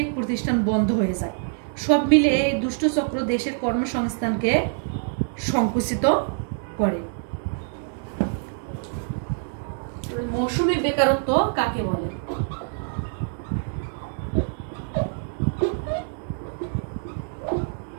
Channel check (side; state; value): left; silent; 62 dB below the other